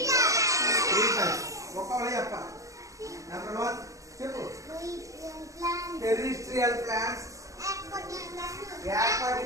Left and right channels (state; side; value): late; left; 0.16 ms